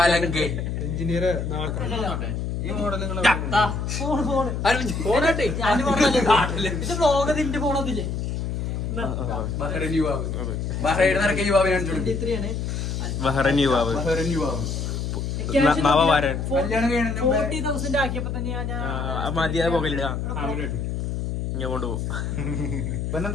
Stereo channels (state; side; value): noise; left; hum, 3 dB below the sound